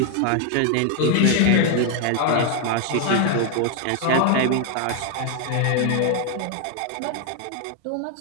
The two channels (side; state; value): both; different; correlation 0.01